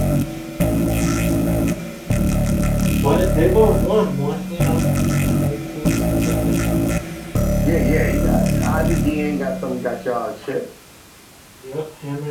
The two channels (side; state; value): both; identical; correlation 1.00